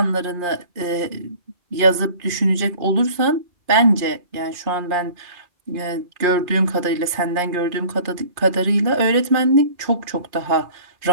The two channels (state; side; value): late; left; 2.4 ms